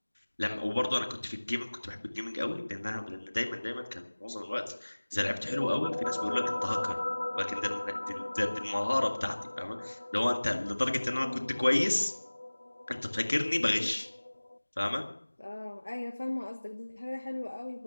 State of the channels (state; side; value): inverted; both; correlation -1.00